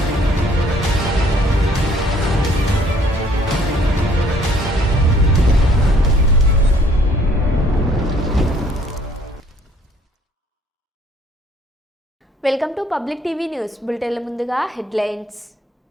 Welcome to public TV news బులెటిన్ల ముందుగా హెడ్లైన్స్.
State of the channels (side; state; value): both; normal; correlation 0.61